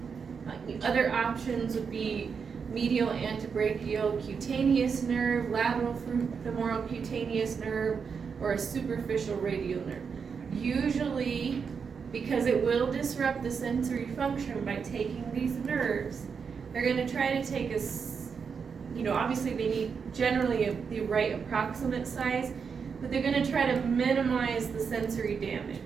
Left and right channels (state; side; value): quieter; left; 6.0 dB